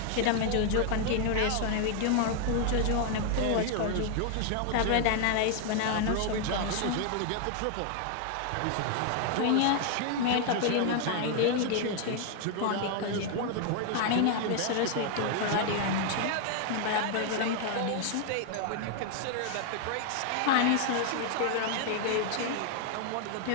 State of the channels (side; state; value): both; different; correlation 0.00